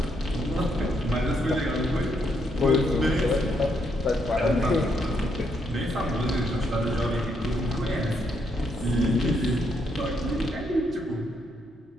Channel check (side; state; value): both; normal; correlation 0.76